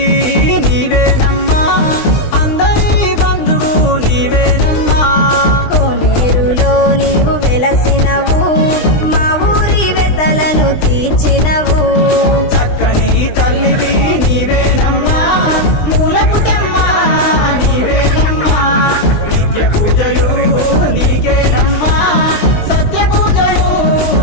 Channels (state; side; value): late; right; 20 ms